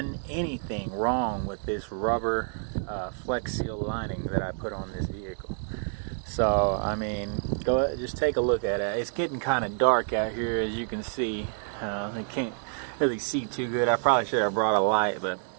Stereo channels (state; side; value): silent; left; 59 dB below the other